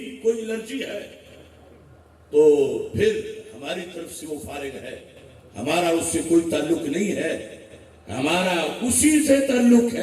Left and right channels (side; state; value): both; identical; correlation 1.00